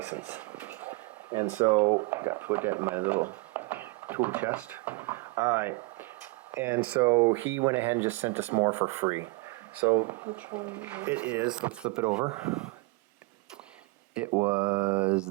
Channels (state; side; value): quieter; left; 25.5 dB